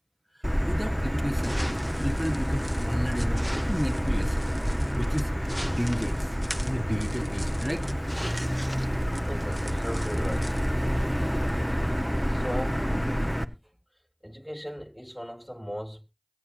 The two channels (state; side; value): identical; both; correlation 1.00